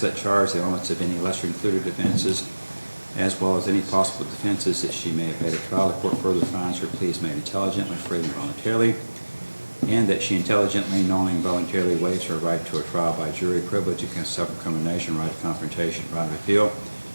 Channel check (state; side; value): inverted; both; correlation -1.00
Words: of that charge, the elements of any lesser included offenses, as well as any possible defenses that she may have had at trial. The court further finds her plea is made intelligently, freely, and voluntarily, and that she intelligently, knowingly, and voluntarily waives her right to a trial by jury, privilege against self-incrimination, right of confrontation, right of appeal,